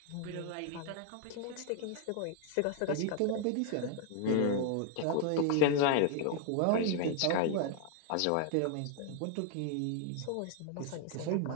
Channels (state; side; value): different; both; correlation 0.01